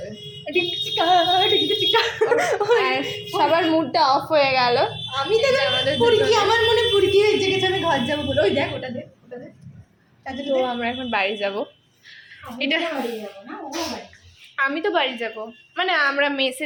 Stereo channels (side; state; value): both; identical; correlation 1.00